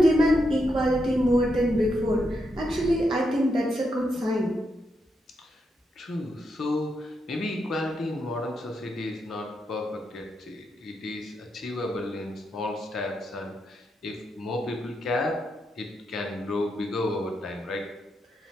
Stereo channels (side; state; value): both; normal; correlation 0.82